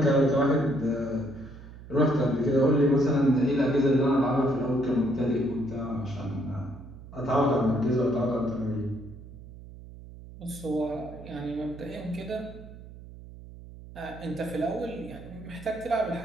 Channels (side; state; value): right; noise; hum, 16 dB below the sound